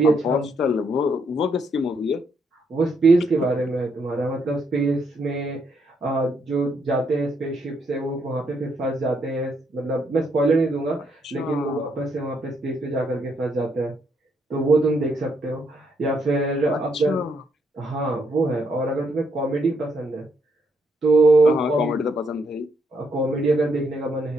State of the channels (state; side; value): normal; both; correlation 0.75